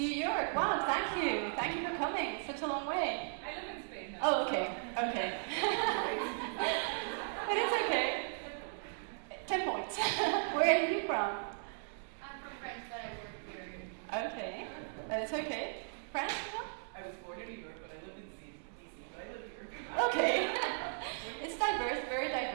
York. Wow, thank you. Thank you for coming. Such a long way. I live in Spain now. Oh, okay. Okay. But it's okay. 10 points. Where are you from? I'm from France, but I work here. Okay. But it's okay. France as well? I was born in New York, but I lived in DC, but I live here. Okay. It's diverse, very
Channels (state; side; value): silent; left; digital silence